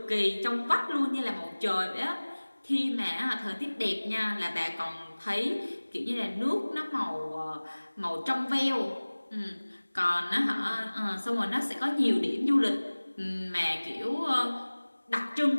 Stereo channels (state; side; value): inverted; both; correlation -1.00